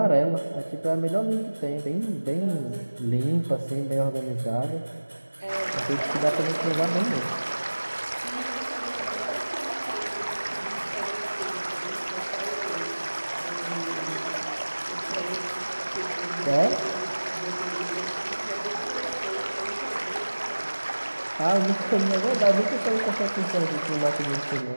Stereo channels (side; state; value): both; inverted; correlation -1.00